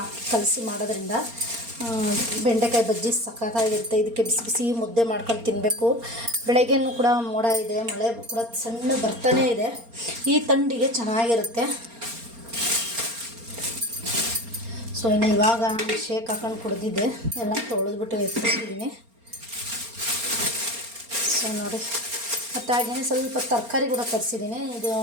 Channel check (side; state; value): left; late; 4.3 ms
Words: ಹಾಕಿ ಕಲಸಿ ಮಾಡೋದ್ರಿಂದ ಬೆಂಡೆಕಾಯಿ ಬಜ್ಜಿ ಸಖತ್ತಾಗಿರುತ್ತೆ. ಇದಕ್ಕೆ ಬಿಸಿ ಬಿಸಿ ಮುದ್ದೆ ಮಾಡ್ಕೊಂಡು ತಿನ್ನಬೇಕು. ಬೆಳಗ್ಗೆನೂ ಕೂಡ ಮೋಡ ಇದೆ, ಮಳೆ ಕೂಡ ಸಣ್ಣ ಬರ್ತಾನೇ ಇದೆ. ಈ ಥಂಡಿಗೆ ಚೆನ್ನಾಗಿರುತ್ತೆ. ಸೊ ಇನ್ನು ಇವಾಗ ಶೇಕ್ ಹಾಕೊಂಡು ಕುಡ್ದಿದ್ದೆ, ಎಲ್ಲ ತೊಳೆದ್ಬಿಟ್ಟು ಎತ್ತಿಟ್ಟಿದ್ದೀನಿ. ಸೊ ನೋಡಿ, ಮತ್ತು ಹಾಗೆಯೇ ಸ್ವಲ್ಪ ತರಕಾರಿ ಕೂಡ ತರಿಸಿದ್ದೀನಿ. ಇದು